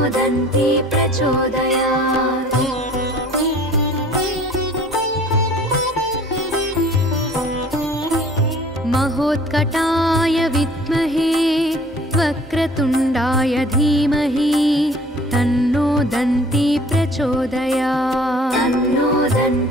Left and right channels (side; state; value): both; normal; correlation 0.51